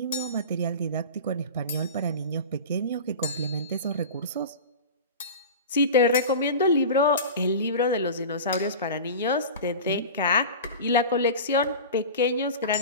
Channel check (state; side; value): inverted; both; correlation -0.31